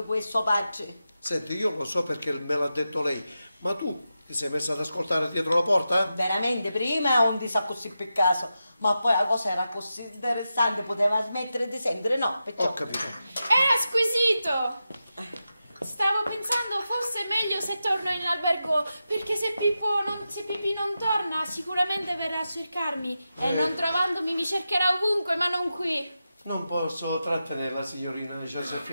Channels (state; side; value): inverted; both; correlation -0.90